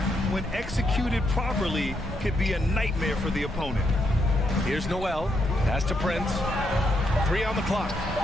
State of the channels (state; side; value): normal; both; correlation 0.78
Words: when executed properly, could be a nightmare for the opponent. Here's Noel. Pass to Prince. 3 on the clock.